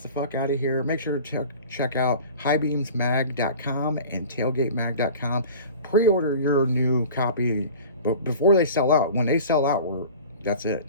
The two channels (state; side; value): inverted; both; correlation -0.40